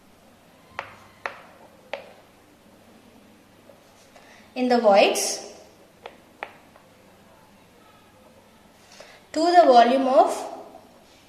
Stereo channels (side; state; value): both; identical; correlation 1.00